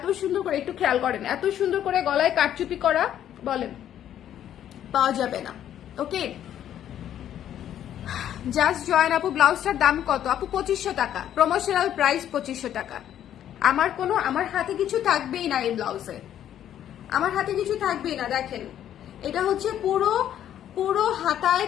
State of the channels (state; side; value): quieter; right; 10.8 dB